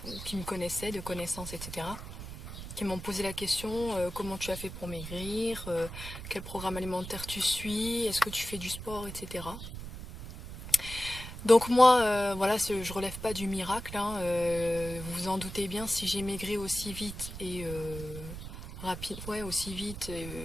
qui me connaissaient, de connaissances, etc. Qui m'ont posé la question, comment tu as fait pour maigrir, quel programme alimentaire tu suis, est-ce que tu fais du sport, etc. Donc moi, voilà, je relève pas du miracle, hein, vous vous en doutez bien, si j'ai maigri aussi vite et rapide, ouais, aussi vite,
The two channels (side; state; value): right; noise; rumble, 10 dB below the sound